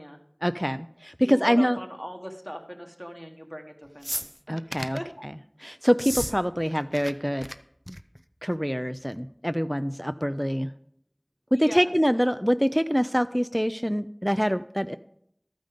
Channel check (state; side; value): identical; both; correlation 1.00